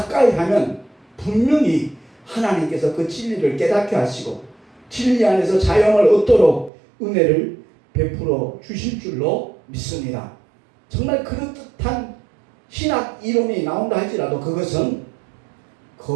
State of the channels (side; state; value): left; drops out; at 6.7 s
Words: 하면 분명히 하나님께서 그 진리를 깨닫게 하시고 진리 안에서 자영을 얻도록 은혜를 베풀어 주실 줄로 믿습니다. 정말 그럴듯한 신학 이론이 나온다 할지라도 그것은